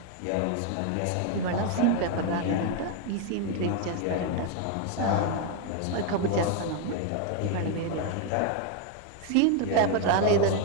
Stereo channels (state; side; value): different; both; correlation 0.01